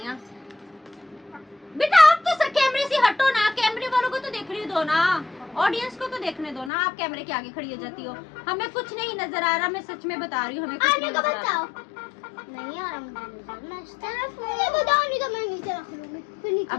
बेटा आप तो सर कैमरे से हटो ना, कैमरे वालों को तो देखने दो ना, ऑडियंस को तो देखने दो ना। आप कैमरे के आगे खड़ी हो जाती हो। हमें कुछ नहीं नजर आ रहा, मैं सच में बता रही हूँ, हमें कुछ नहीं आने को नजर आ रहा। बताओ। नहीं आ रहा मुझे बताओ, नहीं तो मैं नीचे रख लूंगी। फिर नीचे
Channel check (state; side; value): drops out; right; at 6.7 s